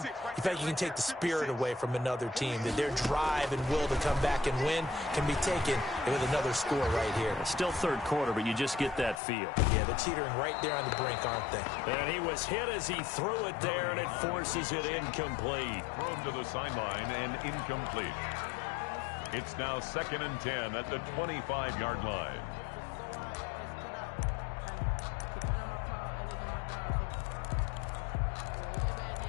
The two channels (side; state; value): right; drops out; at 9.2 s